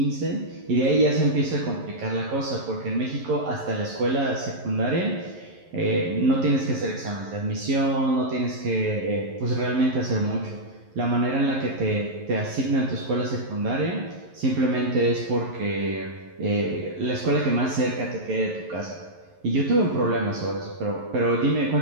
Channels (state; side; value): late; left; 11 ms